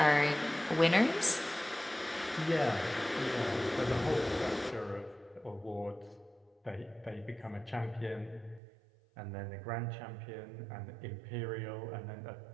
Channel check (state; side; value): drops out; left; at 8.6 s